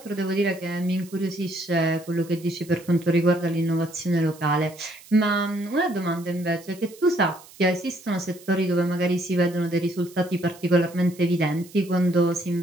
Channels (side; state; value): right; noise; hiss, 22 dB below the sound